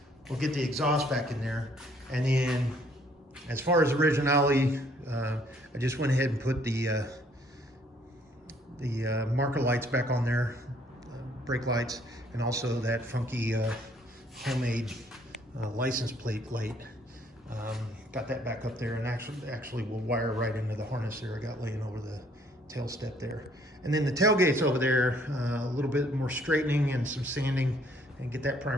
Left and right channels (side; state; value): both; normal; correlation 0.63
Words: exhaust back in there. And then as far as originality, I just went ahead and put the marker lights back on there, brake lights, and also that funky homemade license plate light. Got that back up there, and actually will wire right into the harness there I got laying over the tail step there. And then the tailgate's over there, a little bit more straightening and some sanding, and get that